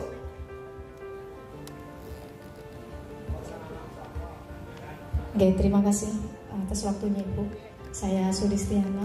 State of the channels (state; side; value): identical; both; correlation 1.00